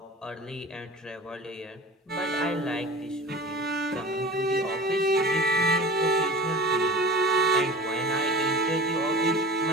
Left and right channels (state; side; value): normal; both; correlation 0.36